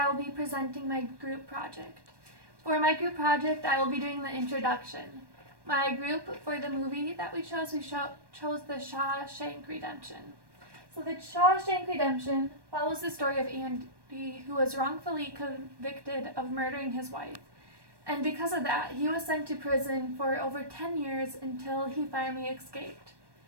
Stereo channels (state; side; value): late; left; 1.2 ms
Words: will be presenting my group project. For my group project, I will be doing the introduction. My group for the movie that we chose the Shawshank Redemption. So the Shawshank Redemption follows the story of Andy, who was wrongfully convicted of murdering his wife. And because of that, he was sent to prison for over 10 years until he finally escaped.